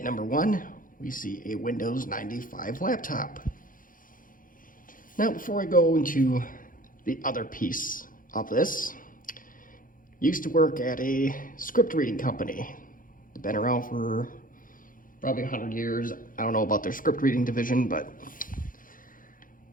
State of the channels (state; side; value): late; right; 0.40 ms